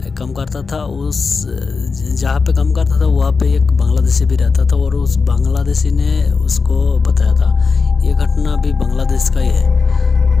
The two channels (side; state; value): right; quieter; 4.8 dB